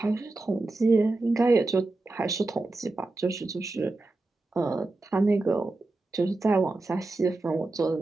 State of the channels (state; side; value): quieter; left; 3.1 dB